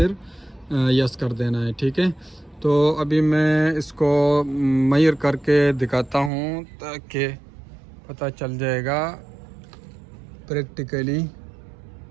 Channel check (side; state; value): left; drops out; at 6.3 s